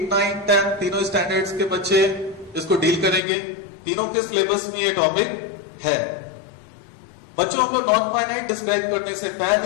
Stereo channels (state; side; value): drops out; right; at 3.2 s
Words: 9, 10 तीनों स्टैंडर्ड्स के बच्चे इसको डील करेंगे। तीनों के सिलेबस में ये टॉपिक है। बच्चों हम लोग नॉन फाइनाइट डिस्क्राइब करने से